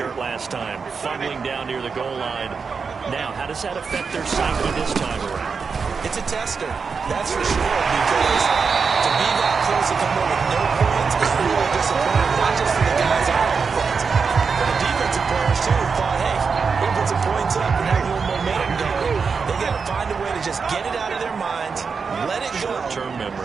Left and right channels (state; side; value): quieter; left; 5.4 dB